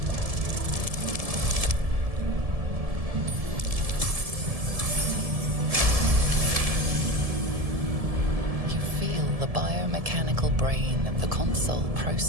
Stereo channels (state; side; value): late; left; 1.7 ms